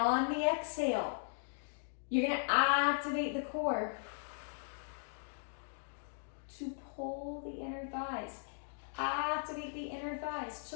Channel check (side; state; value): right; silent; digital silence